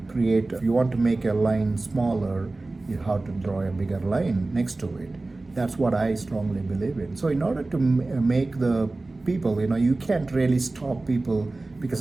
create, if you want to make a line smaller, you have to draw a bigger line next to it. That's what I strongly believe in. So in order to make the people, you can't really stop people, because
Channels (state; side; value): quieter; left; 3.2 dB